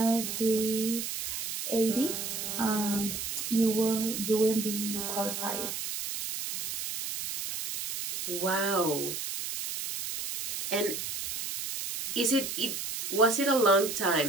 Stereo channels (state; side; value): noise; right; hiss, 5 dB below the sound